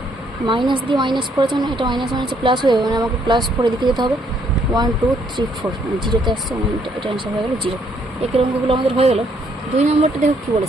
মাইনাস দিয়ে মাইনাস করেছে, মানে এটা মাইনাস প্লাস হয়ে যাবে, মানে আমাকে +4 এদিকে যেতে হবে, 1 2 3 4, মানে 0-তে আসছে, মানে এটা অ্যান্সার হয়ে গেলো 0। একের অঙ্কগুলো আমাদের হয়ে গেল। 2 নম্বরটা দেখো কী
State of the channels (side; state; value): both; normal; correlation 0.69